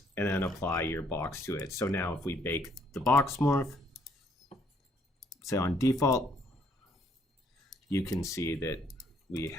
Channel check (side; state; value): both; normal; correlation 0.67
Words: and then apply your box to it. So now if we bake the box morph, say on default, you can see that we